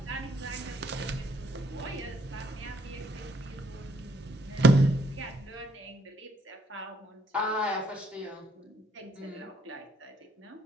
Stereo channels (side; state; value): both; normal; correlation 0.70